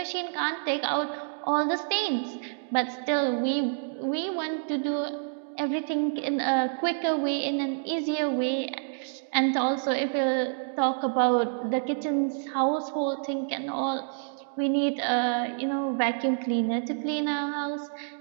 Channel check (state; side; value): silent; left; digital silence